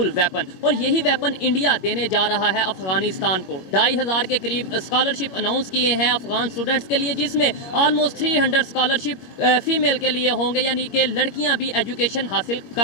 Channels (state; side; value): late; right; 21 ms